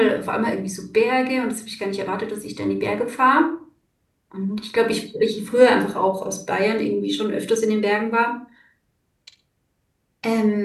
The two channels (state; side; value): identical; both; correlation 1.00